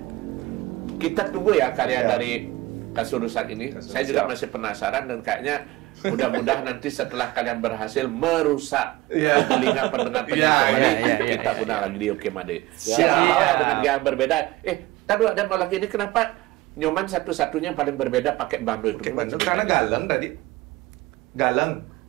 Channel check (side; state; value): left; quieter; 18.8 dB